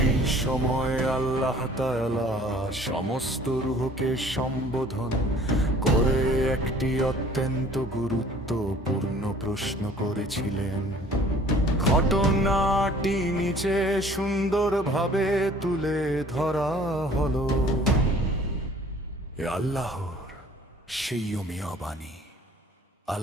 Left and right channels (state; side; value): normal; both; correlation 0.52